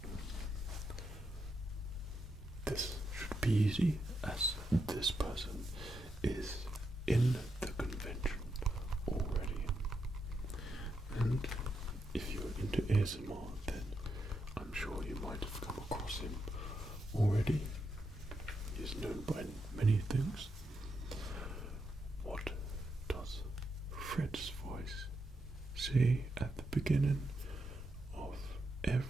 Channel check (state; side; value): normal; both; correlation 0.83